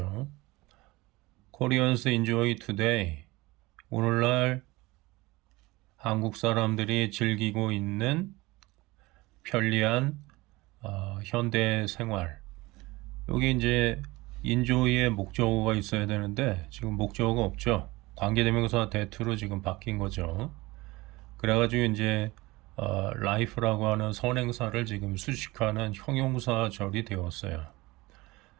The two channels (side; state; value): left; quieter; 21.4 dB